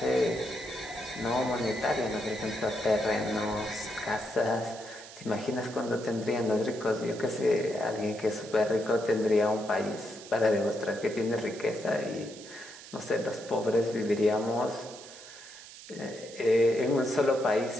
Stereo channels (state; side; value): noise; right; hiss, 16 dB below the sound